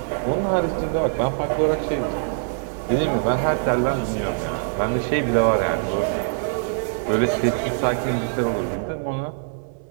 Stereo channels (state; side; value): silent; left; 63 dB below the other